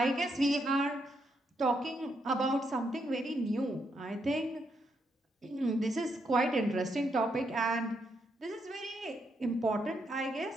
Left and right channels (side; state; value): both; normal; correlation 0.79